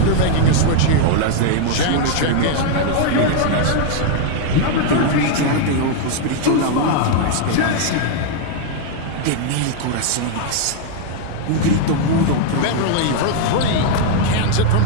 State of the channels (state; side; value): different; both; correlation 0.00